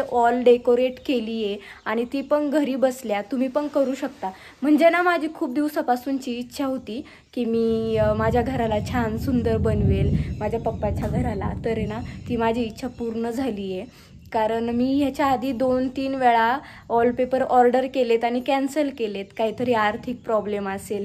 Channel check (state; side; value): identical; both; correlation 1.00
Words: वॉल डेकोरेट केली आहे आणि ती पण घरी बसल्या. तुम्ही पण करू शकता. म्हणजे ना माझी खूप दिवसापासूनची इच्छा होती की मी माझ्या घराला छान सुंदर बनवेल, माझ्या पप्पाच्या घराला. तर आहे ना ती माझी इच्छा पूर्ण झाली आहे. कारण मी ह्याच्या आधी 2-3 वेळा वॉलपेपर ऑर्डर केलेत आणि कॅन्सल केलेत. काहीतरी आर्थिक प्रॉब्लेम असेल,